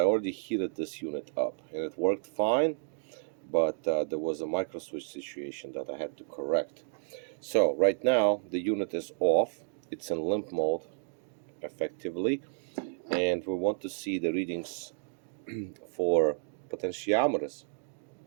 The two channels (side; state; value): left; silent; digital silence